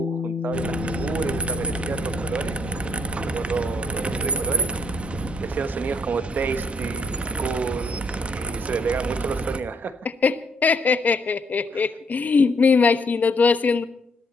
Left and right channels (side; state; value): both; normal; correlation 0.68